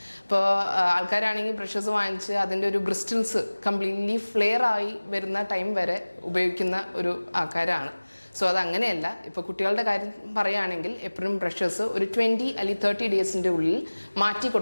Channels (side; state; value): both; inverted; correlation -1.00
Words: ഇപ്പോൾ ആൾക്കാരാണെങ്കിൽ ബ്രഷസ് വാങ്ങിച്ച് അതിൻ്റെ ഒരു ബ്രിസ്റ്റിൽസ് കംപ്ലീറ്റ്ലി ഫ്ലെയർ ആയി വരുന്ന ടൈം വരെ ഉപയോഗിക്കുന്ന ഒരു ആൾക്കാരാണ്. സോ അതങ്ങനെയല്ല. ഇപ്പോൾ കുട്ടികളുടെ കാര്യം പറയുകയാണെങ്കിൽ എപ്പോഴും ബ്രഷസ് ഒരു 20 അല്ലെങ്കിൽ 30 ഡേയ്സിൻ്റെ ഉള്ളിൽ മാറ്റി